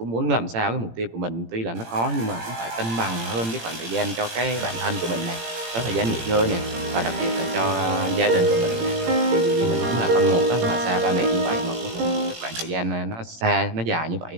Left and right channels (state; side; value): late; left; 18 ms